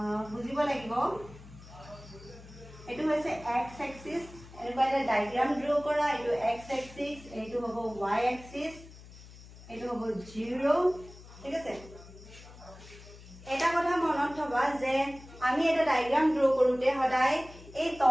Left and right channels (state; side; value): noise; left; hum, 19 dB below the sound